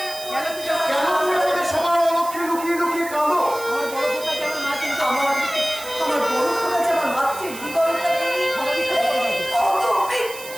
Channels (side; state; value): right; noise; hiss, 13 dB below the sound